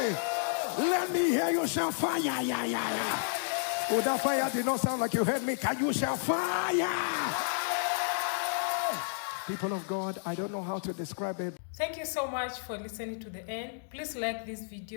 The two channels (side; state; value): right; silent; digital silence